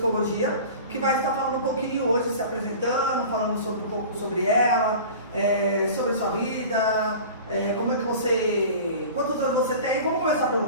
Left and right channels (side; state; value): both; inverted; correlation -0.38